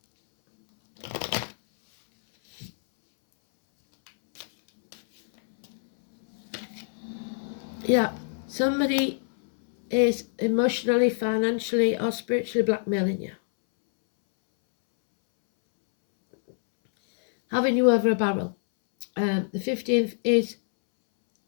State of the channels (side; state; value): right; silent; 61 dB below the other